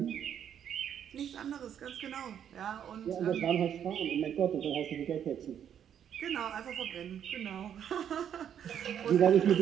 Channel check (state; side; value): quieter; left; 9.1 dB